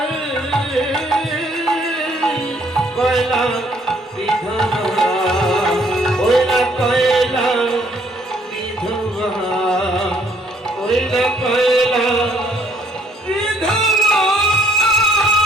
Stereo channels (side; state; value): both; normal; correlation 0.65